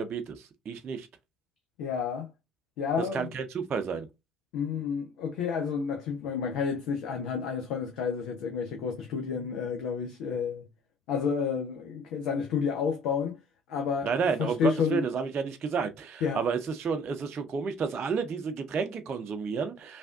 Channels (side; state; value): both; normal; correlation 0.50